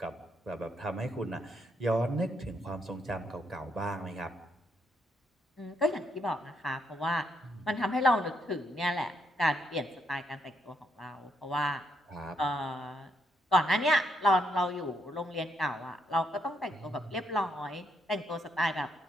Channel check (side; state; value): both; normal; correlation 0.75